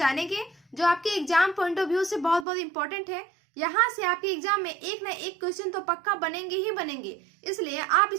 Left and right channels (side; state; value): left; drops out; at 2.5 s